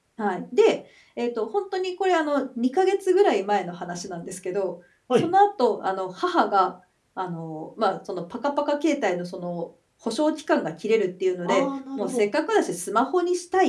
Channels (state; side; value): identical; both; correlation 1.00